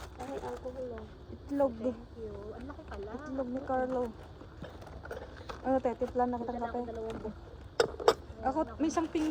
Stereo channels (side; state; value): both; identical; correlation 1.00